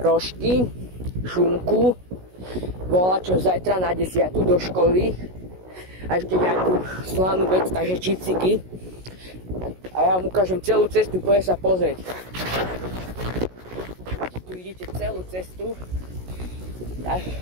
šunku, volačo zajtra na 10 do školy a ešte nejakú slanú vec, takže čipsiky. A ja vám ukážem celú cestu, poďme sa pozrieť. Tu vidíte celú cestu.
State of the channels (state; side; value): late; left; 16 ms